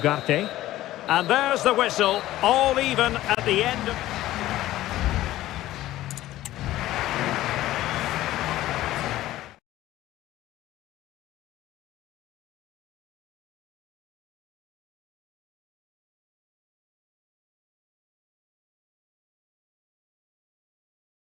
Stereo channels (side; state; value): right; quieter; 15.2 dB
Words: And there's the whistle, all even at the end of...